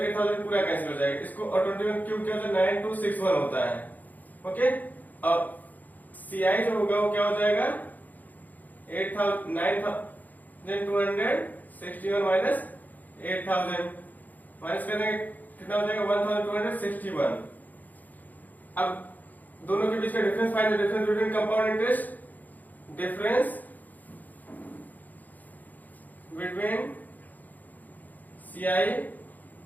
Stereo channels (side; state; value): right; late; 0.082 ms